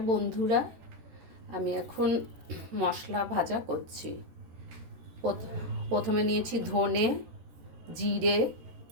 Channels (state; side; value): late; left; 13 ms